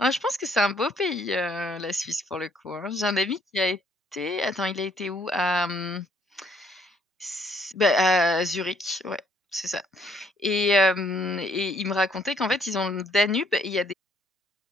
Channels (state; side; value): normal; both; correlation 0.66